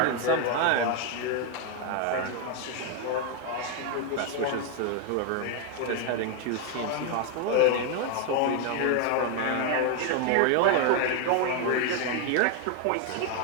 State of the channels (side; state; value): both; different; correlation 0.01